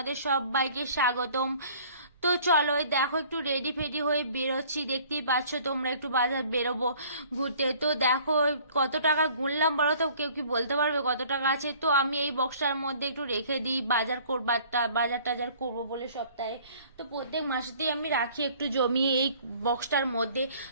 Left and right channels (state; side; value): inverted; both; correlation -0.53